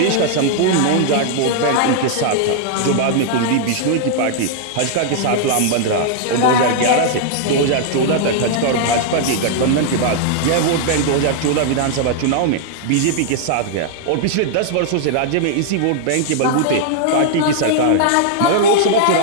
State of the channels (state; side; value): different; both; correlation -0.01